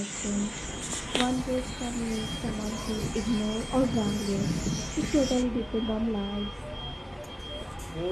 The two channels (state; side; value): identical; both; correlation 1.00